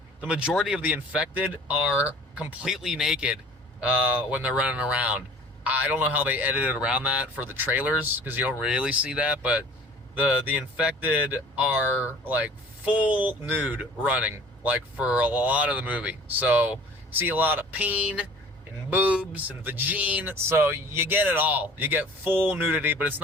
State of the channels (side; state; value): both; normal; correlation 0.47